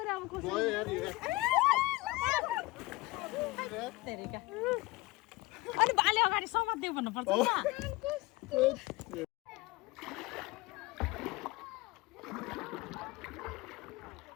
अब गयो यार तेरिका अनि बाले अगाडि समात्देऊ भन्नुपर्छ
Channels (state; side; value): quieter; right; 21.3 dB